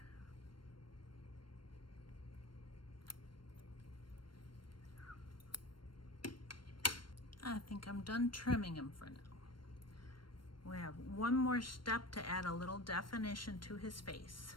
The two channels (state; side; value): late; right; 0.72 ms